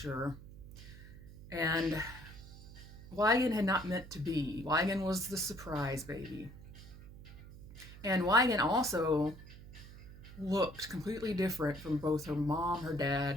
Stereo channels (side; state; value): right; noise; hum, 16 dB below the sound